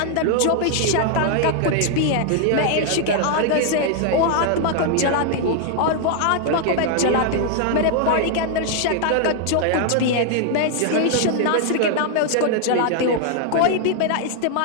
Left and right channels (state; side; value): different; both; correlation 0.00